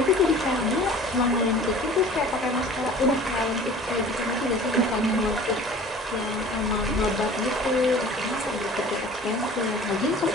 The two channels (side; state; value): both; normal; correlation 0.45